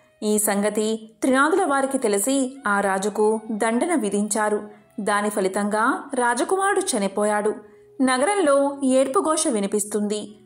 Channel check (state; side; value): identical; both; correlation 1.00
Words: ఈ సంగతి త్రినాదుల వారికి తెలిసి ఆ రాజుకు దండన విధించారు. దాని ఫలితంగా రాజకుమారుడు చనిపోయాడు. నగరంలో ఏడ్పుఘోష వినిపిస్తుంది.